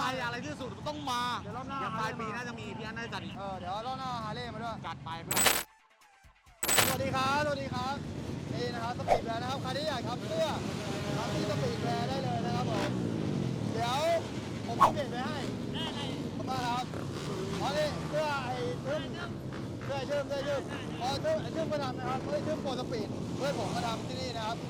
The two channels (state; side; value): identical; both; correlation 1.00